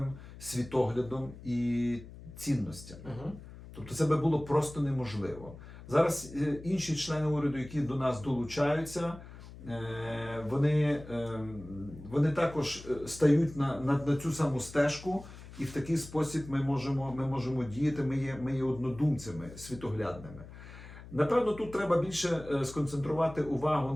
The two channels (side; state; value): left; noise; hum, 16 dB below the sound